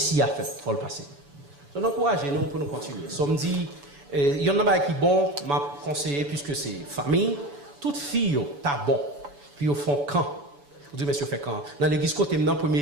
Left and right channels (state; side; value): late; left; 7.0 ms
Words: a fait. Il faut le passer. Donc, encouragez-nous pour nous continuer. So, me dit, il y en a qui bon, m'a conseillé, puisque c'est famille, toute fille, t'as bon. Puis au fond, quand? Vous dites, monsieur, fait quand? Dans l'église, côté maintenant,